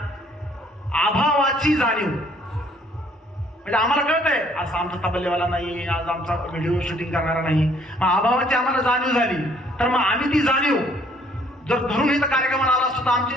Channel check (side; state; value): both; normal; correlation 0.62